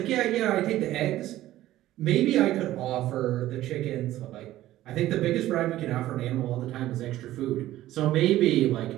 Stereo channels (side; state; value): left; quieter; 14.7 dB